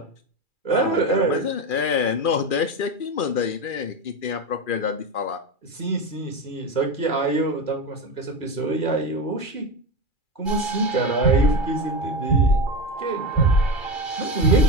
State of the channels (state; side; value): late; right; 2.4 ms